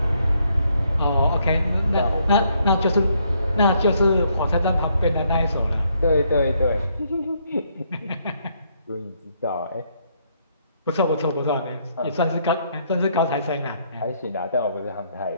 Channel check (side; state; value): both; inverted; correlation -0.72